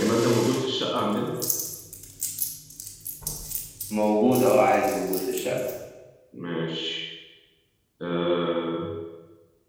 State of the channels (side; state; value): both; identical; correlation 1.00